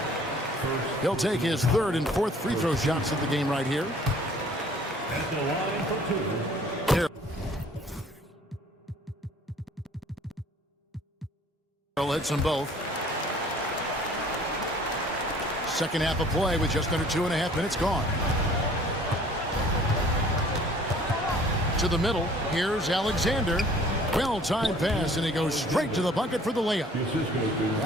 He'll take his 3rd and 4th free throw shots of the game right here. At the line for 2. Carroll hits them both. Second half of play with just under 2.5 minutes gone. To the middle. Here's Alexander. Well-timed pass, and he goes straight to the bucket for the layup.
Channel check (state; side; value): normal; both; correlation 0.54